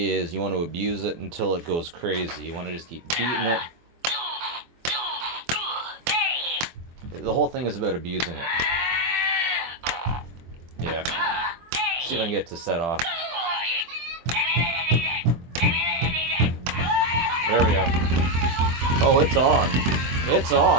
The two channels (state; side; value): late; left; 23 ms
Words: is you want to abuse it until it goes crazy. You want to just keep beating it. The whole thing is about abusing it. Yeah. See if I can get it to set off. There we go. Oh, it's on. It's